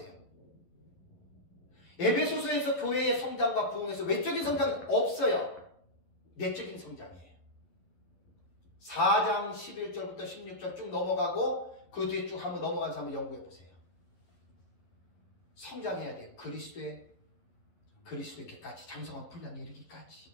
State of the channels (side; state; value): right; late; 11 ms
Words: 에베소서에서 교회의 성장과 부흥에서 외적인 성장은 없어요. 내적인 성장이에요. 4장 11절부터 16절 쭉 넘어가고 그 뒤에 쭉 한번 넘어가면서 한번 연구해 보세요. 성장해야 돼요. 그리스도에게까지 장성한 분량에